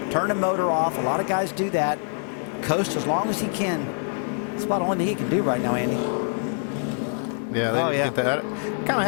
turn the motor off. A lot of guys do that. Coast as long as he can. That's about the only thing he can do right now, Andy. Yeah, they didn't get that. I kind of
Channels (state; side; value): silent; right; 62 dB below the other